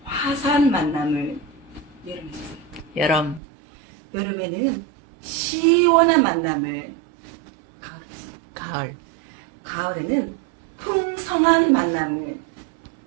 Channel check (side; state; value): left; drops out; at 3.4 s